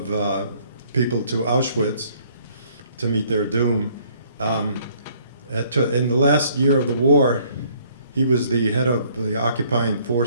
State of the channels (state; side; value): inverted; both; correlation -0.62